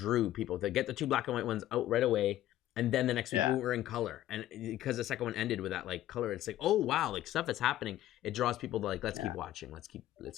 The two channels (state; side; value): quieter; right; 13.7 dB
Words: people to get the 2 black and white ones out right away, and then the next week Yeah. we were in color. And because the second one ended with that like color, it's like, oh wow, like stuff is happening. It draws people to like, let's keep watching, let's keep